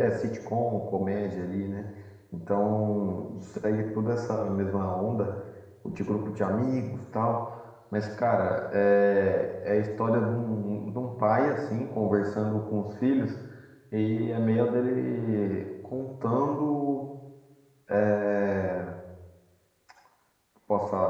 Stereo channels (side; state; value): both; identical; correlation 1.00